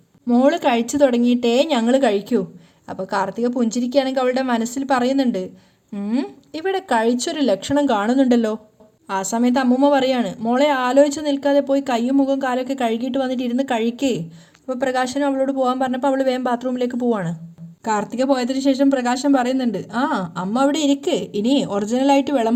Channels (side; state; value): both; identical; correlation 1.00